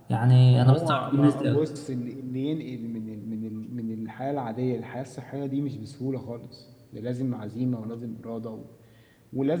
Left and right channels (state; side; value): identical; both; correlation 1.00